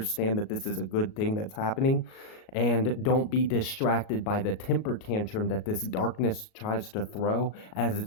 that this is a good thing that's happening, and don't be distracted by the temper tantrum that this darkness tries to throw as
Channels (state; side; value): late; right; 37 ms